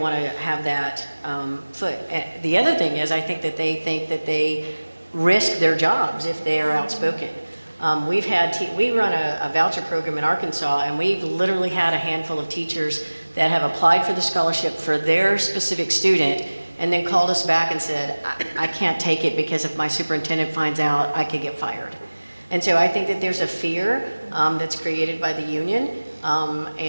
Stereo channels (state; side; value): inverted; both; correlation -1.00